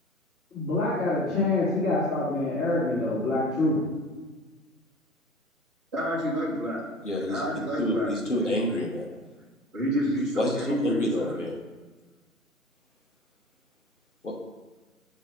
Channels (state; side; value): normal; both; correlation 0.41